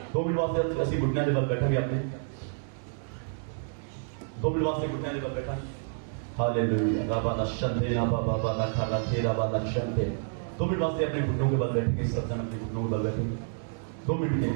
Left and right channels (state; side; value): silent; left; digital silence